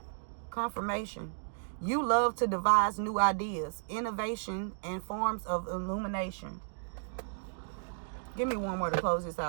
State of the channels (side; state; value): left; silent; digital silence